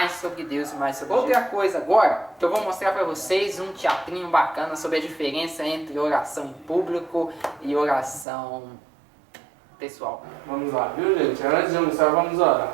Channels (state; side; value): drops out; left; at 8.2 s